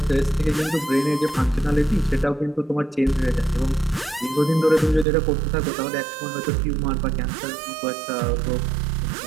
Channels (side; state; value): left; drops out; at 5.1 s